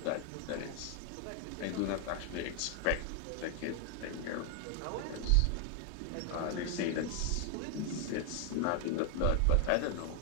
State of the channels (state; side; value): different; both; correlation 0.00